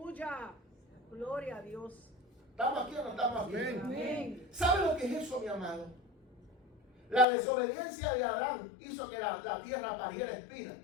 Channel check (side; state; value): right; drops out; at 7.2 s